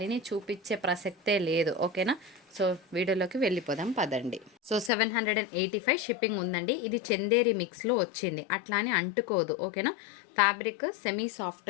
చూపించే ప్రసక్తే లేదు, ఓకేనా. సో వీడియోలోకి వెళ్ళిపోదాం పదండి. సో 785 షిప్పింగ్ ఉందండి. ఇది చందేరి మిక్స్లో వచ్చింది, అట్లా అని అంటుకోదు, ఓకేనా. ఫ్యాబ్రిక్ సెమీ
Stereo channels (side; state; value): right; drops out; at 4.9 s